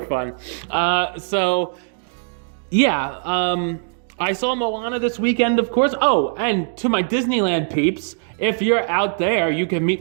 fun. So I saw Moana this weekend, of course. Oh, and to my Disneyland peeps, if you're out there, you can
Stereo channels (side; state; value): left; silent; digital silence